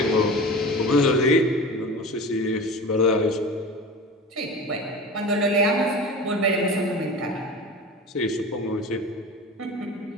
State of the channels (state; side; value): normal; both; correlation 0.33